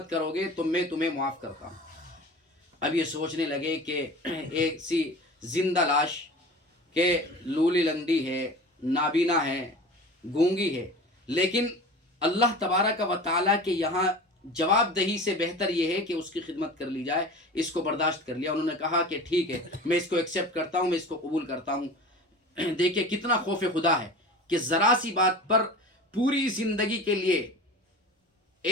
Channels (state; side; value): normal; both; correlation 0.36